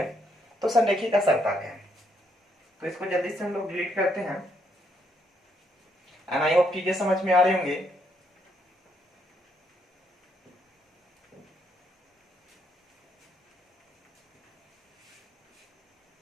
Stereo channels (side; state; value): both; normal; correlation 0.74